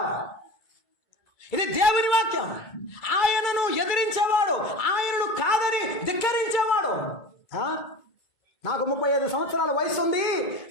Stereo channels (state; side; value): late; right; 2.2 ms